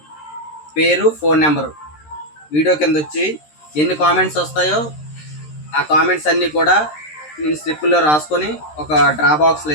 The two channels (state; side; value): late; right; 13 ms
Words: పేరు, ఫోన్ నెంబరు వీడియో కింద వచ్చి ఎన్ని కామెంట్స్ వస్తాయో ఆ కామెంట్స్ అన్నీ కూడా నేను స్లిప్పుల్లో రాసుకొని ఒక డ్రా బాక్స్లో